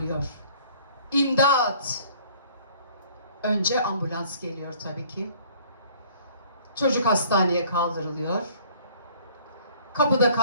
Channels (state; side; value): inverted; both; correlation -0.55